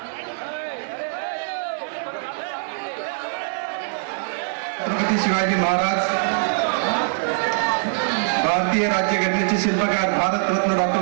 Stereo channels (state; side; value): silent; left; digital silence